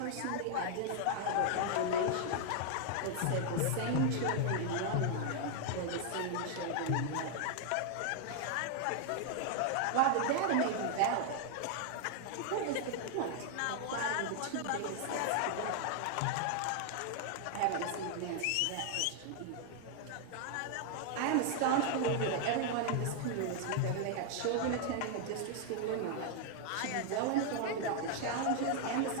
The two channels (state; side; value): different; both; correlation 0.00